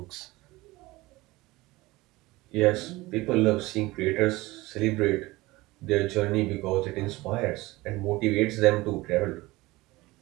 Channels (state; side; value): quieter; left; 20.4 dB